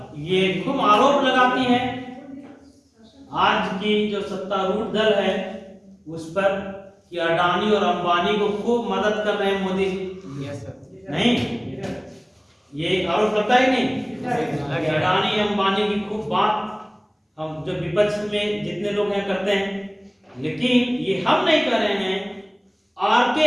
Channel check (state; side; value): identical; both; correlation 1.00